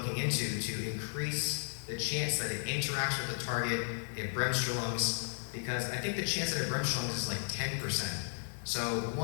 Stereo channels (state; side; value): silent; right; digital silence